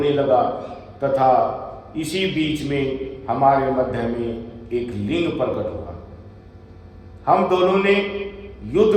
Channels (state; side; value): identical; both; correlation 1.00